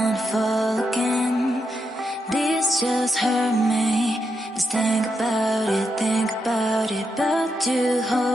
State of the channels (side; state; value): both; normal; correlation 0.83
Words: fall again. This just hurt me. Just think about it, but you